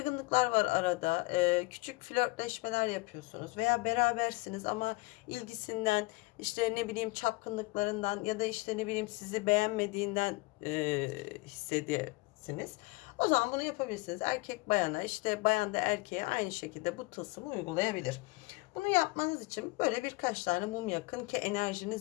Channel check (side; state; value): right; quieter; 23.7 dB